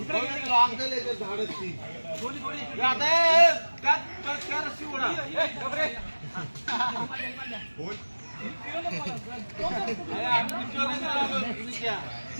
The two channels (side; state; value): both; inverted; correlation -1.00